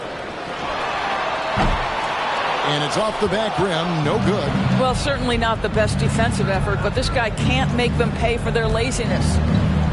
And it's off the back rim. No good. Well, certainly not the best defensive effort, but this guy can't make them pay for their laziness.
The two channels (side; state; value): both; identical; correlation 1.00